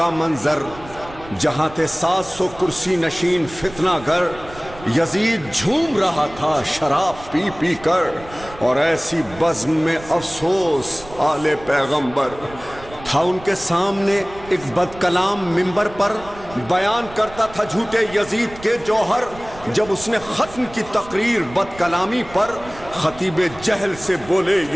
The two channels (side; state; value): right; noise; rumble, 18 dB below the sound